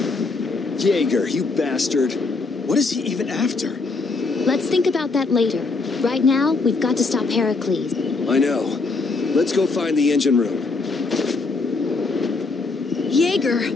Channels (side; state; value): right; quieter; 3.9 dB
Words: Jaeger, you bastard. What is he even after? Let's think about that later. Right now, we've got to stop Heracles. I know. Let's go find the engine room. Jaeger,